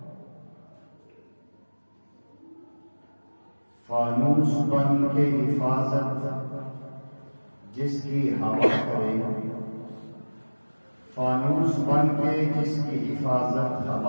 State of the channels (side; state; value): both; inverted; correlation -1.00